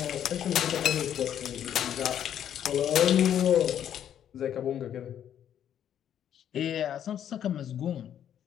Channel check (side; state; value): right; quieter; 9.9 dB